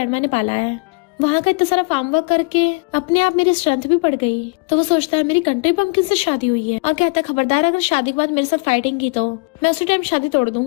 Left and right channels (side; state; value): right; quieter; 30.6 dB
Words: ने पाला है, वहाँ का इतना सारा फार्म वर्क करके अपने आप मेरी स्ट्रेंथ भी बढ़ गई। तो वो सोचता है मेरी कंट्री पम्पकिन से शादी हुई है, और कहता है खबरदार अगर शादी के बाद मेरे साथ फाइटिंग की तो मैं उसी टाइम शादी तोड़